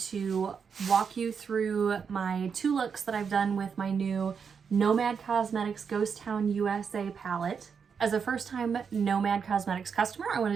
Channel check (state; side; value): quieter; left; 6.4 dB